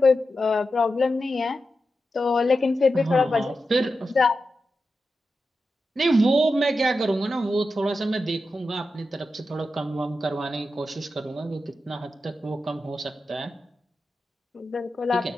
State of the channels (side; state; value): both; normal; correlation 0.90